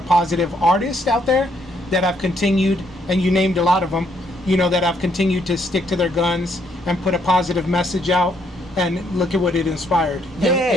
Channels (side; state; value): both; normal; correlation 0.71